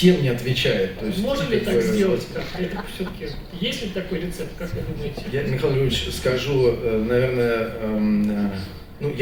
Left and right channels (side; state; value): both; identical; correlation 1.00